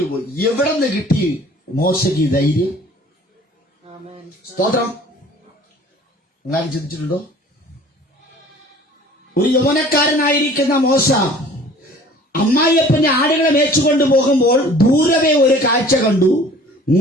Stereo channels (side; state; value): both; normal; correlation 0.48